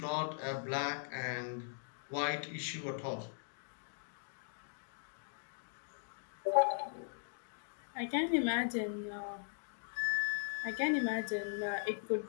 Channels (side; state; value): right; silent; digital silence